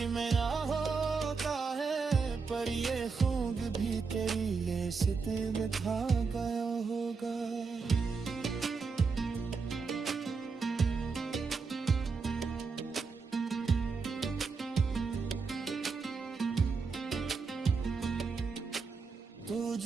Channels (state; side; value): quieter; left; 4.9 dB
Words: मेरा होता है, पर ये खूब भी तेरी लेसते बिठा गया होगा। तू